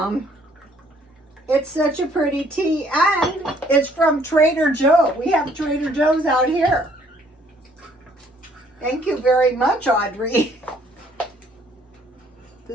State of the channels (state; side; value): normal; both; correlation 0.62